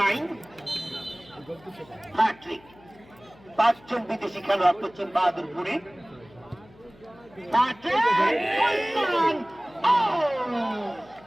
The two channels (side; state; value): left; noise; hum, 25 dB below the sound